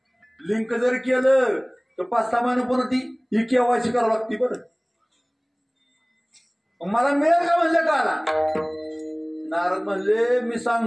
लिंक जर केलं तर 5-6 महिने पुन्हा ती ही केवायसी करावं लागते बरं. मला मिळेल का म्हणले काला. नारद म्हणले मी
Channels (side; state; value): both; identical; correlation 1.00